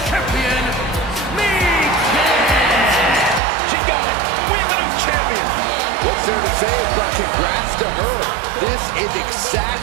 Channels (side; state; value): left; drops out; at 3.4 s